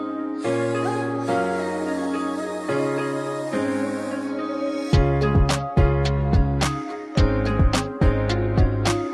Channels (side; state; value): both; identical; correlation 1.00